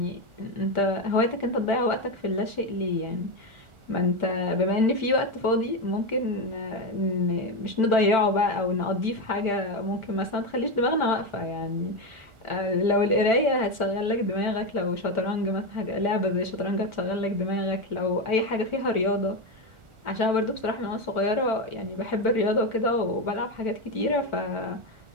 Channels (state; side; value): late; left; 1.4 ms